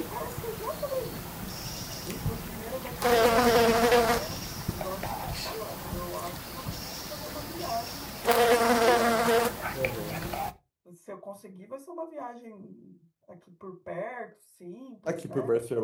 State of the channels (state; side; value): identical; both; correlation 1.00